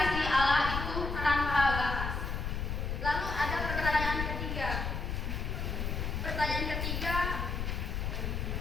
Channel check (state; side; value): noise; left; rumble, 2 dB below the sound